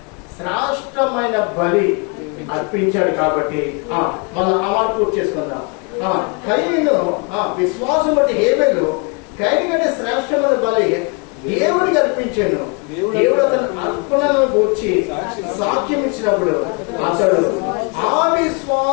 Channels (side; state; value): right; quieter; 33.8 dB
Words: శ్రేష్టమైన బలి అర్పించాడు. కాబట్టి మనం ఆ మాట పూర్తి చేసుకుందాం. కయ్యను విశ్వాసం బట్టి హేబేలు కయ్యని కంటే శ్రేష్టమైన బలి దేవుడికి అర్పించాను. దేవుడు అతను అర్పణను గూర్చి సాక్ష్యం ఇచ్చినప్పుడు అతడు ఆ